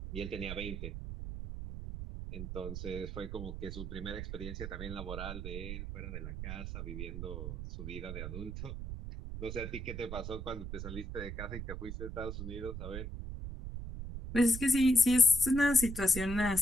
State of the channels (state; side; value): noise; right; rumble, 6 dB below the sound